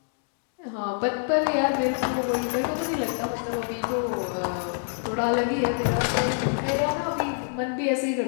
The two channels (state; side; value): silent; right; 61 dB below the other